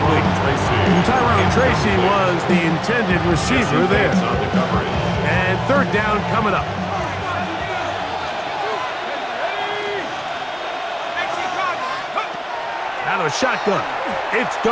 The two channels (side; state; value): both; identical; correlation 1.00